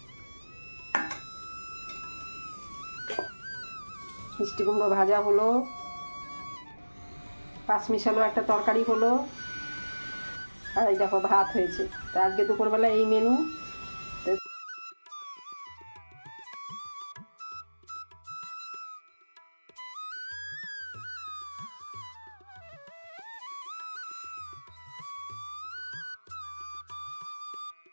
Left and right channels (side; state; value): both; inverted; correlation -1.00